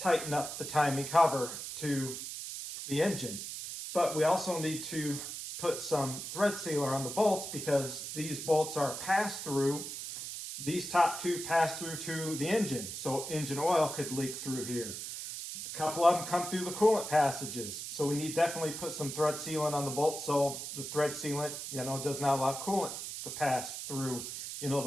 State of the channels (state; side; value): noise; right; hiss, 7 dB below the sound